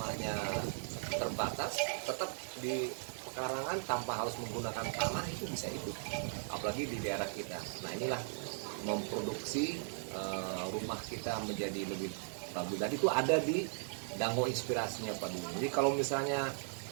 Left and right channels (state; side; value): silent; left; 53 dB below the other